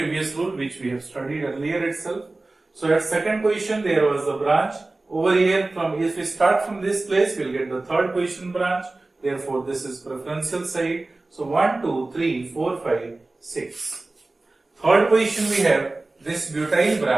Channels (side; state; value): left; quieter; 3.1 dB